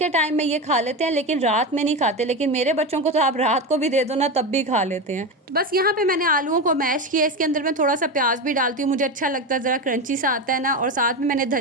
टाइम में ये खा लेते हैं लेकिन रात में नहीं खाते, लेकिन मेरे बच्चों को तो आप रात को भी दे दो ना तब भी खा लेते हैं। तो बस यहाँ पे मैंने आलूओं को मैश किया, इसके अंदर मैं थोड़ा सा प्याज भी डालती हूँ, मुझे अच्छा लगता है, ज़रा क्रंची सा आता है ना। और साथ में मैंने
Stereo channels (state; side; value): normal; both; correlation 0.18